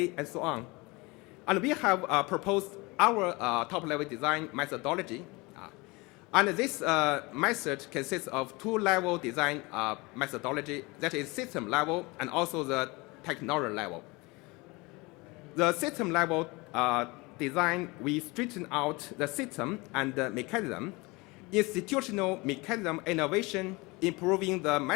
and so on. And we have proposed our top-level design methodology. And this method consists of two-level design methodology, that is system level and also the technology level. The system level design, we straighten out the system and the mechanism, institutional mechanism innovation, improving the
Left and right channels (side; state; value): right; quieter; 24.8 dB